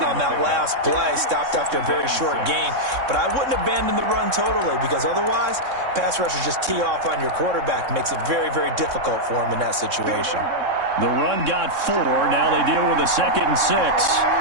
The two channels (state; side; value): late; left; 3.6 ms